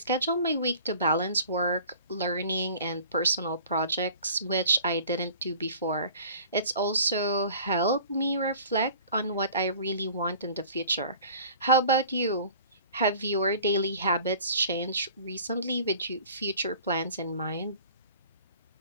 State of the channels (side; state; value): both; inverted; correlation -0.46